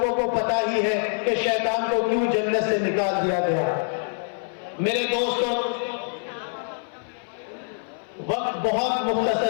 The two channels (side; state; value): right; silent; 57 dB below the other